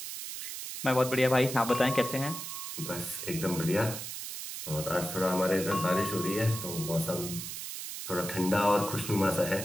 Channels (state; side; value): noise; right; hiss, 7 dB below the sound